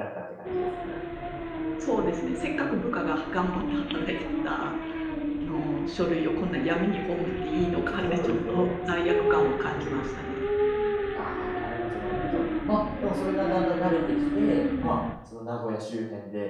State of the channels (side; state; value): both; identical; correlation 1.00